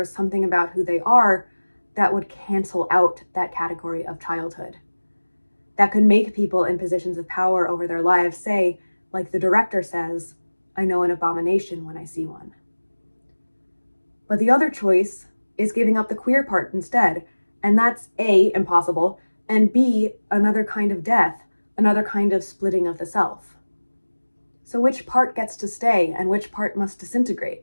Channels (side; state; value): both; inverted; correlation -1.00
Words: something about who they are that would cancel out that category of childhood. That could make people in positions of power over their lives say, like the director says, "I know an abomination when I see one." But the other choice is giving up the queer part instead, and that's A, impossible, and B, another kind of death, another kind of splitting of the self. So which part gets to stay and which part must disintegrate?